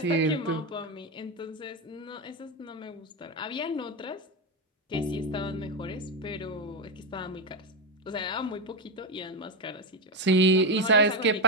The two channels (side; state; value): both; normal; correlation 0.11